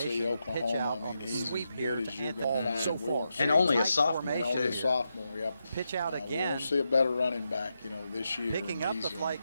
Oklahoma. I mean, he's as good as you're going to find. And only a sophomore, too. Only a sophomore, yep. We won't see a better running back, you know, this year.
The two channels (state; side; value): inverted; both; correlation -0.86